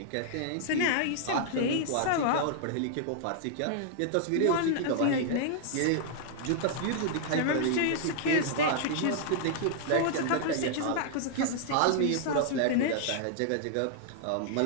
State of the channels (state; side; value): different; both; correlation -0.01